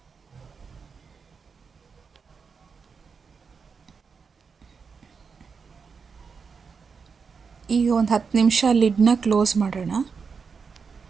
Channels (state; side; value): quieter; left; 5.5 dB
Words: ಈಗ ಒಂದು 10 ನಿಮಿಷ ಲಿಡ್ನ ಕ್ಲೋಸ್ ಮಾಡೋಣ.